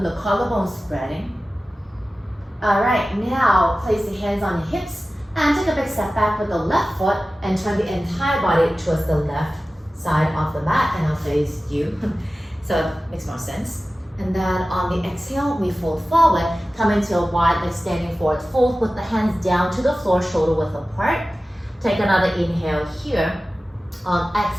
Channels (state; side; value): normal; both; correlation 0.96